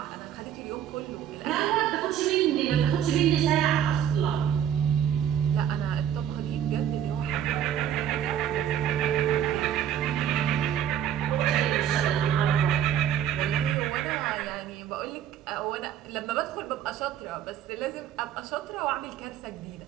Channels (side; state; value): left; quieter; 9.8 dB